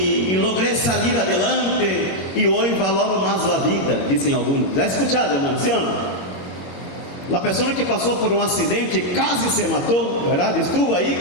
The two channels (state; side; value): late; right; 21 ms